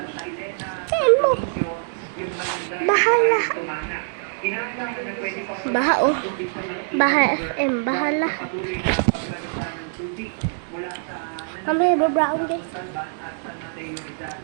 Saan mo? Bahala. Baha oh. Baha FM. Bahala. Mamaya ba-brown guys?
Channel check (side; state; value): left; silent; digital silence